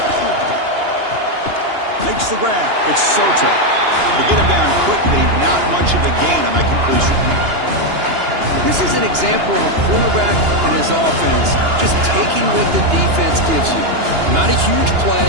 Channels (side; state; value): left; late; 2.9 ms